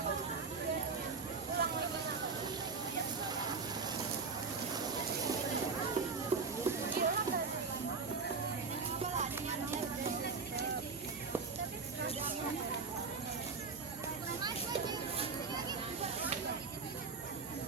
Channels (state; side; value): quieter; left; 4.7 dB